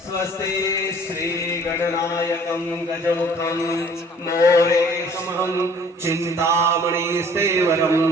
स्वस्ति श्री गणनायकं गजमुखं मोरेशमहं चिन्तामणिस्तेवरं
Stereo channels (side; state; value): both; normal; correlation 0.54